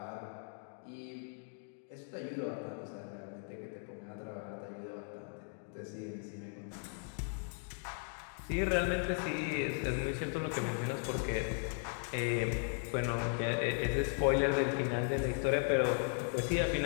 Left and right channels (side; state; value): right; silent; 53 dB below the other